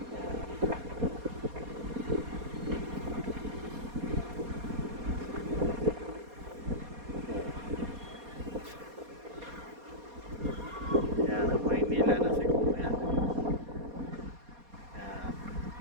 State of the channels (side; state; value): left; late; 4.2 ms